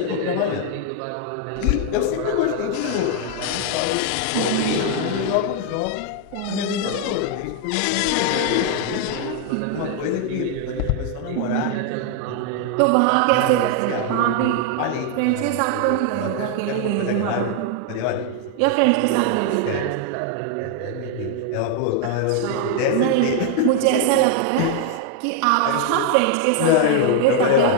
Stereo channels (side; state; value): both; different; correlation 0.00